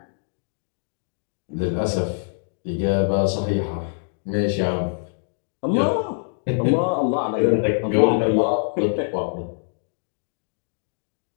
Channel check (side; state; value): right; silent; digital silence